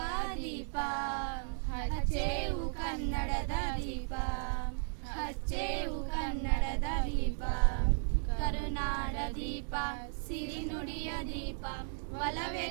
ದೀಪ. ಹಚ್ಚೇವು ಕನ್ನಡದ ದೀಪ, ಹಚ್ಚೇವು ಕನ್ನಡದ ದೀಪ, ಕರುನಾಡ ದೀಪ, ಸಿರಿನುಡಿಯ ದೀಪ,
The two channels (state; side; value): silent; left; digital silence